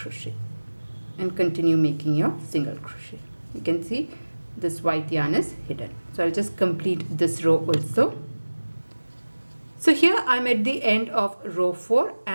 and continue making your single crochet. You can see this white yarn is hidden. So I'll just complete this row also. So here I'm at the end of row 4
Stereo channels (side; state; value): both; inverted; correlation -1.00